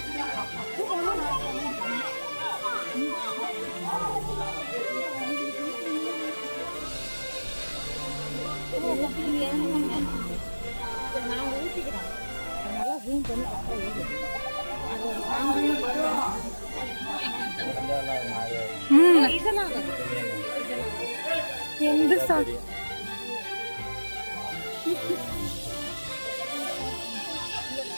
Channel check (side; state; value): both; inverted; correlation -1.00